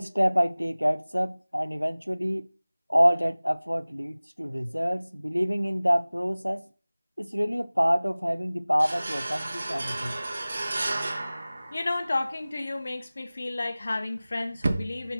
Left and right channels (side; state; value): both; inverted; correlation -0.99